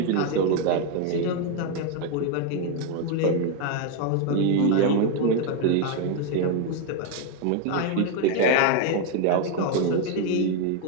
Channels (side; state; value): both; different; correlation 0.01